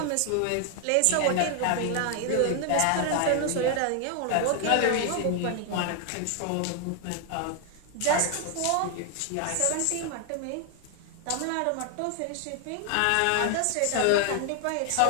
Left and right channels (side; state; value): both; different; correlation 0.00